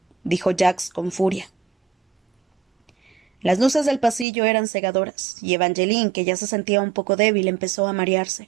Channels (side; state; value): left; drops out; at 4.2 s